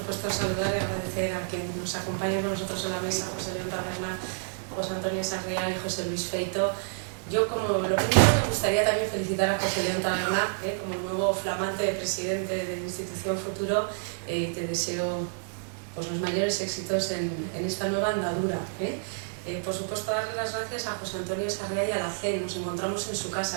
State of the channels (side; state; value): left; silent; digital silence